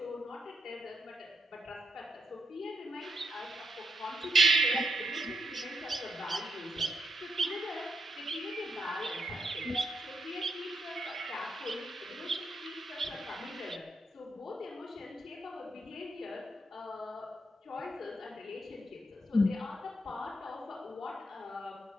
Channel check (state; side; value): normal; both; correlation 0.79